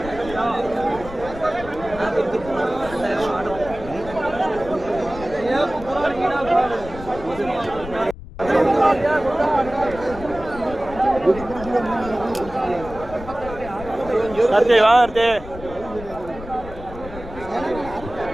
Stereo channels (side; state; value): left; noise; rumble, 13 dB below the sound